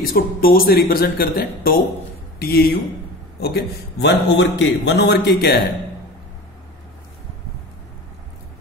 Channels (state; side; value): normal; both; correlation 0.35